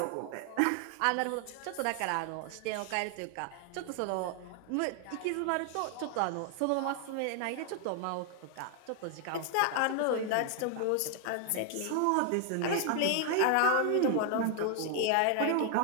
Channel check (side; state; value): both; different; correlation 0.00